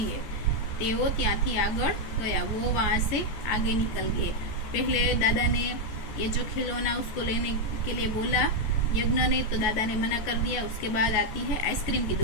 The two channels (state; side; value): late; right; 14 ms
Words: है। तेवो त्याथी आगळ गया, वो वहां से आगे निकल गए। पहले दादा ने ये जो खिलौना उसको लेने के लिए बोला यज्ञ ने, तो दादा ने मना कर दिया। उसके बाद आती है आइसक्रीम की